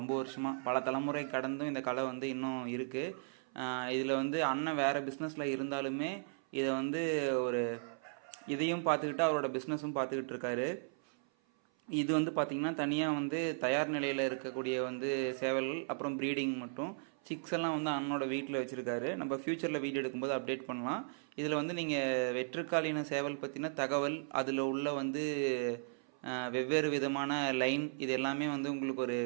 வருஷமாக. பல தலைமுறை கடந்தும் இந்த கலை வந்து இன்னும் இருக்குது. இதில் வந்து அண்ணன் வேறு பிஸ்னஸில் இருந்தாலுமே இதை வந்து ஒரு இதையும் பார்த்துக்கிட்டு அவரோட பிஸ்னஸும் பார்த்துக்கிட்டு இருக்காரு. இது வந்து பார்த்திங்கன்னா தனியாக வந்து தயார் நிலையில் இருக்கக்கூடிய வந்து சேவல்கள், அப்புறம் ப்ரீடிங் மட்டும் சிக்ஸ் எல்லாம் வந்து அண்ணனோட வீட்டில் வச்சுருக்காரு. நம்ம ஃப்யூச்சரில் வீடியோ எடுக்கும்போது அப்டேட் பண்ணலாம். இதில் வந்து நீங்கள் வெற்றுக்காலின சேவல் பற்றின தகவல், அதில் உள்ள வந்து வெவ்வேறு விதமான லைன், இது எல்லாமே வந்து உங்களுக்கு ஒரு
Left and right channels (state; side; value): silent; left; 54 dB below the other